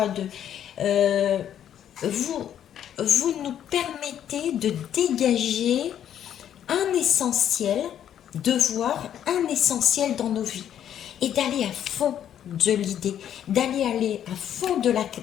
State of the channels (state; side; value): quieter; right; 10.1 dB